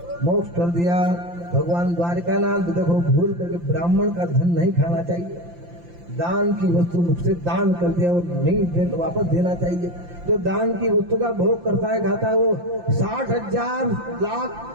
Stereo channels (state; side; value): late; left; 5.8 ms